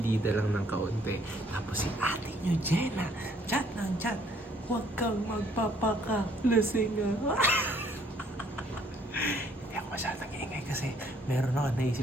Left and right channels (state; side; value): normal; both; correlation 0.64